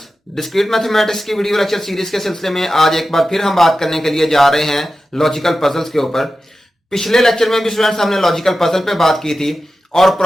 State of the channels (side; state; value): both; normal; correlation 0.93